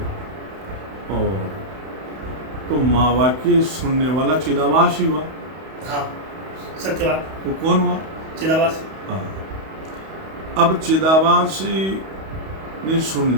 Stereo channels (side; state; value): left; late; 31 ms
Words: और तो माँ वाक्य सुनने वाला चिदाभास ही हुआ। हाँ, सत्य बात। वो कौन हुआ? चिदाभास। हाँ, अब चिदाभास ने सुन